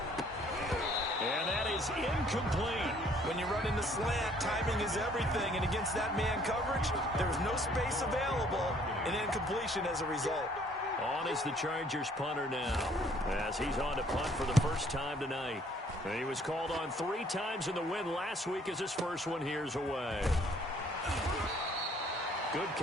And that is incomplete. When you run in the slant, timing is everything. And against that man coverage, there's no space available. An incompletion as a result. On is the Chargers punter now, as he's on to punt for the first time tonight. And he was called on 3 times in the win last week as his first one here's away. Good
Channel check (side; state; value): both; normal; correlation 0.61